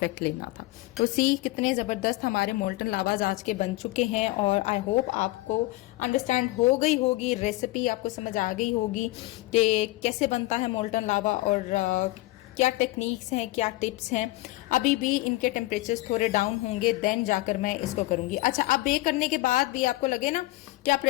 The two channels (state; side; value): quieter; right; 19.3 dB